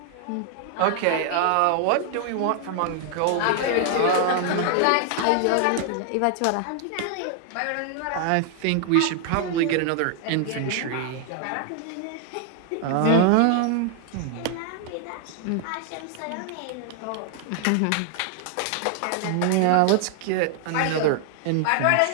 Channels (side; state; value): both; different; correlation 0.00